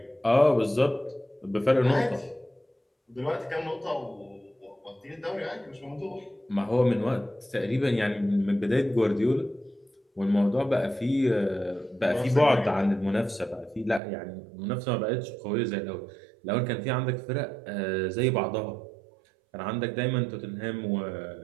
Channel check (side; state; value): left; drops out; at 14.0 s